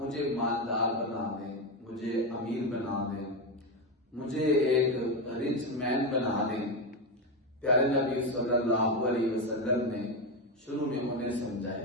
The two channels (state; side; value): normal; both; correlation 0.12